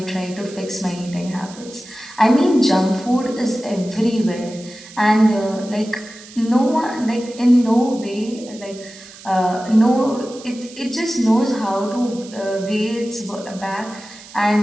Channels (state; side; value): noise; right; hiss, 18 dB below the sound